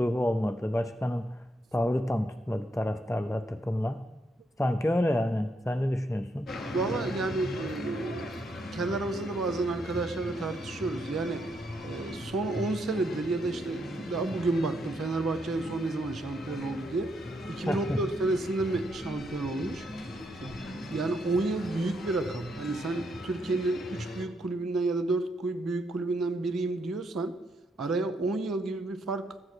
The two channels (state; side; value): normal; both; correlation 0.77